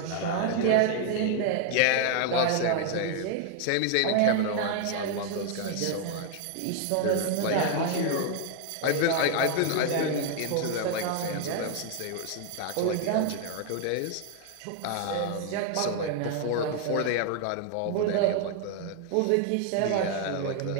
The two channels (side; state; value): both; different; correlation 0.00